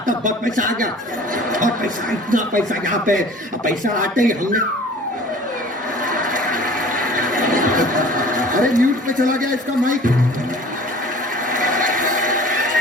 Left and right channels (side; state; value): both; normal; correlation 0.45